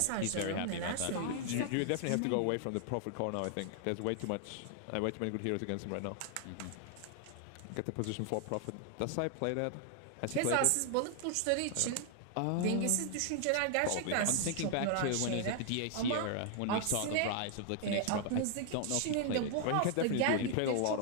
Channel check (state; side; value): different; both; correlation 0.00